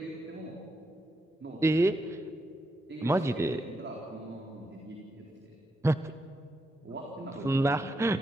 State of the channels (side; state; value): both; normal; correlation 0.83